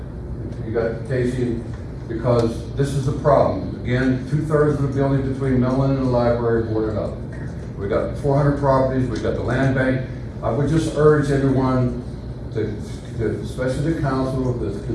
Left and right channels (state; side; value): identical; both; correlation 1.00